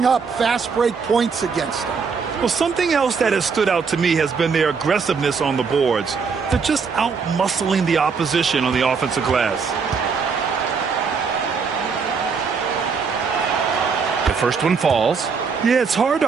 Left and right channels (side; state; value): left; quieter; 5.5 dB